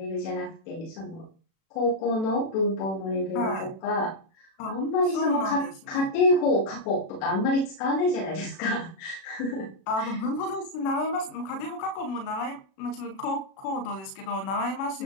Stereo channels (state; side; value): late; right; 36 ms